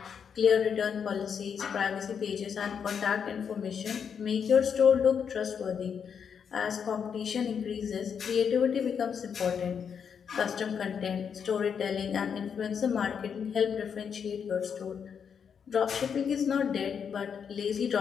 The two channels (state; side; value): quieter; right; 7.1 dB